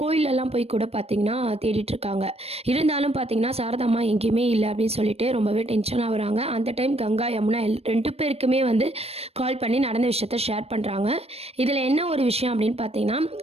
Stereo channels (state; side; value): late; left; 0.29 ms